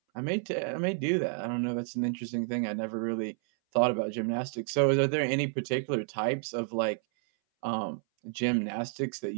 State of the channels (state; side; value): silent; left; 58 dB below the other